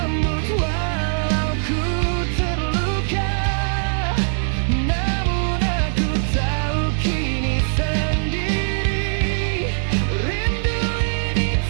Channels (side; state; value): left; silent; 60 dB below the other